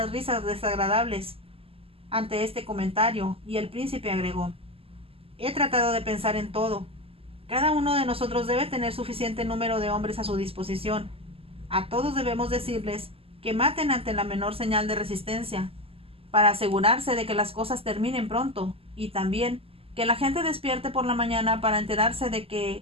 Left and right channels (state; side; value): late; left; 0.28 ms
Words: risas desagradables ante este comentario, y el príncipe agregó: he tratado de pensar en todo. Cada uno de nosotros debe tener suficiente número de hombres a su disposición. A todos debemos decirles que maten ante la menor señal de resistencia, para asegurarse de que las cosas terminen pronto, y también que la gente despierte por la mañana para enterarse de que